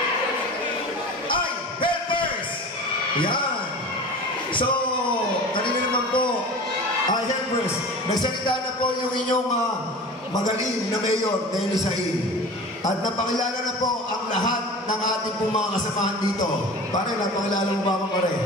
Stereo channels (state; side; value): normal; both; correlation 0.37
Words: Ay, Helpers! Yan! So, kanina naman po, Helpers, nagsalita na po yung inyong magaling na Mayor Denny Sain. At napakilala na po ang lahat ng ating pong mga kasamahan dito. Pare, napakilala mo ba ako, pare?